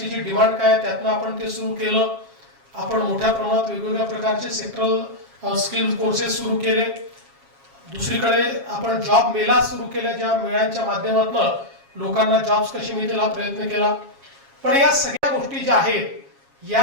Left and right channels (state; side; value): late; left; 7.3 ms